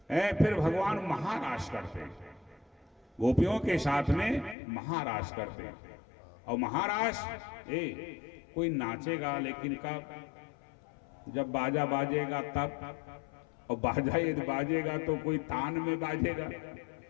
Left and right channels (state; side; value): drops out; right; at 4.5 s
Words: फिर भगवान महाराज करते हैं, गोपियों के साथ में महाराज करते। और महाराज कोई नाचेगा लेकिन कब? जब बाजा बाजेगा तब। और बाजा यदि बाजेगा तो कोई तान में बाजेगा।